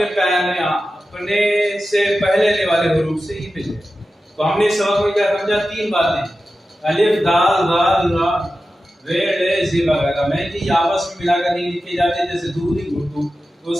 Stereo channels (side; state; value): both; normal; correlation 0.93